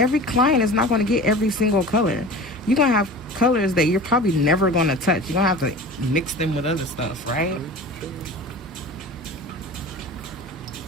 client is not going to get every single color. You're going to have colors that you're probably never going to touch. You're going to have to mix them with other stuff, right?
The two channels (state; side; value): normal; both; correlation 0.37